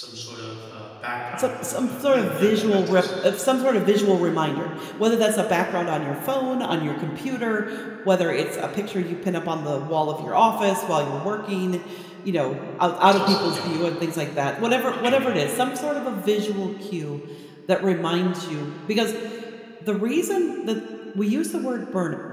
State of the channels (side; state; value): both; identical; correlation 1.00